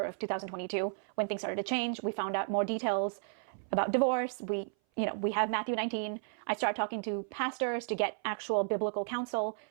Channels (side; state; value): left; silent; 55 dB below the other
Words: of 2022 when things started to change. We found out more details about divorce. We have Matthew 19. I started talking to pastors to get actual biblical counsel.